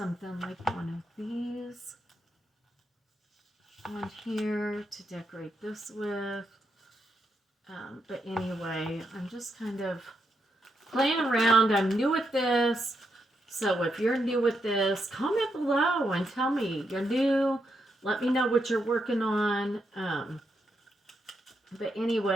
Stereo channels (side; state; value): both; normal; correlation 0.82